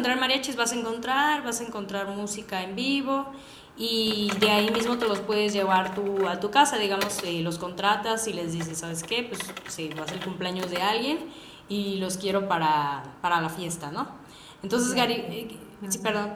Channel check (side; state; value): both; identical; correlation 1.00